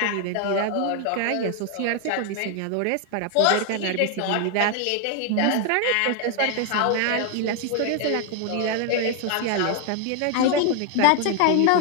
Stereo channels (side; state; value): both; different; correlation 0.00